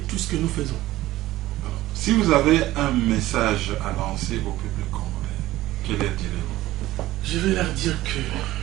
tout ce que nous faisons. Alors, si vous avez un message à lancer au peuple congolais, quel leur direz-vous? Je vais leur dire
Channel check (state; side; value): quieter; left; 16.3 dB